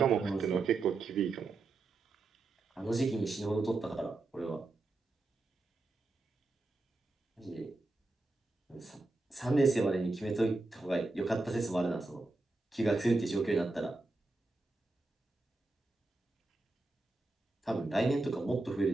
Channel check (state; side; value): quieter; left; 3.2 dB